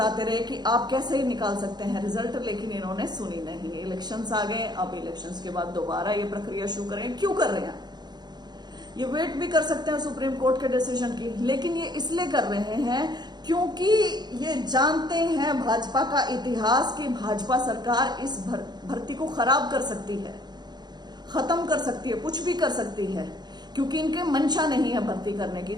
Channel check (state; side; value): late; left; 0.20 ms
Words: रहे कि आप कैसे ही निकाल सकते हैं रिजल्ट, लेकिन इन्होंने सुनी नहीं। इलेक्शंस आ गए, अब इलेक्शंस के बाद दोबारा ये प्रक्रिया शुरू करें। क्यों कर रहे हैं? ये वेट भी कर सकते हैं सुप्रीम कोर्ट के डिसीजन की, लेकिन ये इसलिए कर रहे हैं क्योंकि ये जानते हैं भाजपा का इतिहास कि भाजपा सरकार इस भर्ती को खराब कर सकती है, खत्म कर सकती है, कुछ भी कर सकती है, क्योंकि इनके मंशा नहीं है भर्ती करने की।